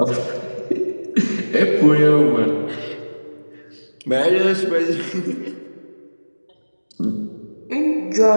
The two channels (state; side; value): inverted; both; correlation -1.00